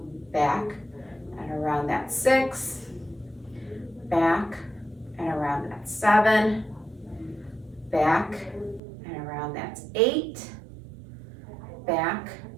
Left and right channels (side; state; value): left; drops out; at 8.8 s